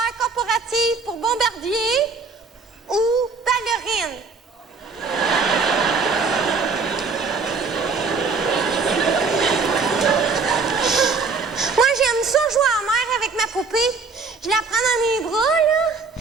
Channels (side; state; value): left; quieter; 4.5 dB